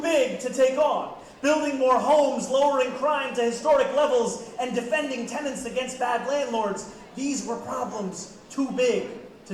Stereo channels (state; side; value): identical; both; correlation 1.00